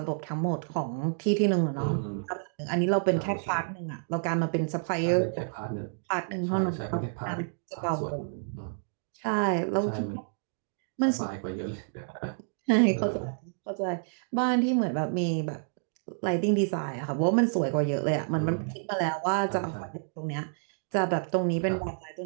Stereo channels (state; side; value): silent; left; digital silence